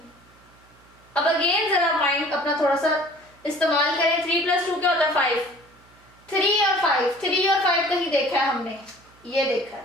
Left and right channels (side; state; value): right; noise; hum, 29 dB below the sound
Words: अब अगेन जरा माइंड अपना थोड़ा सा इस्तेमाल करें। 3 + 2 क्या होता है? 5। 3 और 5 कहीं देखा है हमने? ये देखा